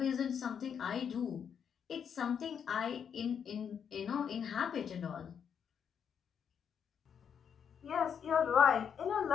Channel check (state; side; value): quieter; right; 7.6 dB